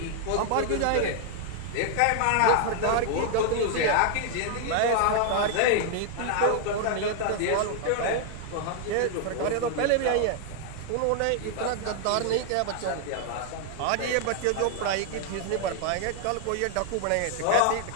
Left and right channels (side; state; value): both; different; correlation 0.00